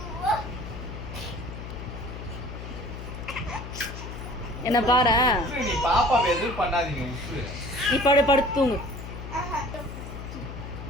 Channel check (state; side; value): noise; left; hum, 9 dB below the sound